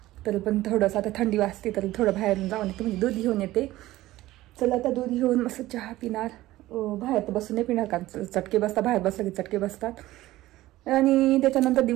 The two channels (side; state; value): left; quieter; 16.5 dB